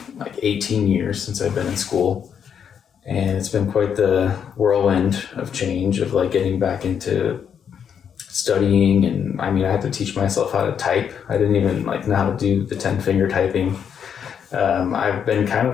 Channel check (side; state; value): right; quieter; 7.8 dB